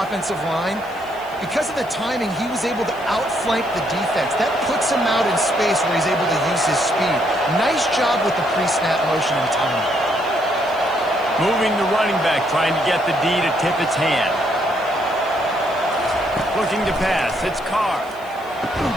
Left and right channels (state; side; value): noise; left; hiss, 25 dB below the sound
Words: line, because of the timing, he was able to outflank the defense. That puts him out in space where he's able to use his speed. Nice job with the pre-snap motion and timing. Moving the running back, trying to get the D to tip its hand. Looking to pass, it's Carr.